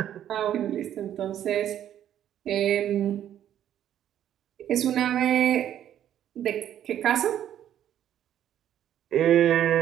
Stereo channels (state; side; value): quieter; left; 10.8 dB